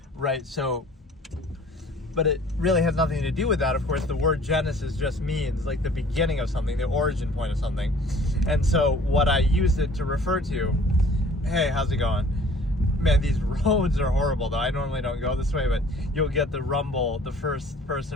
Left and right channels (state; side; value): normal; both; correlation 0.52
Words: right? So, but it really has nothing to do with that. Of course, the word Genesis just means like the beginning of something, the origin point of something. And so what I use it to refer to, hey, how's it going? Man, these roads are horrible though. I normally don't go this way, but you'll get the rumble, the first